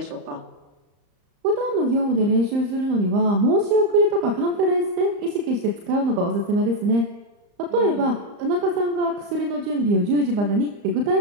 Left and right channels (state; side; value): late; left; 34 ms